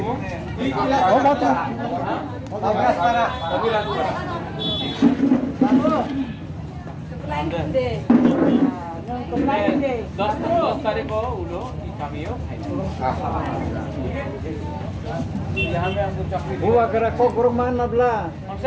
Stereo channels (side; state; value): both; identical; correlation 1.00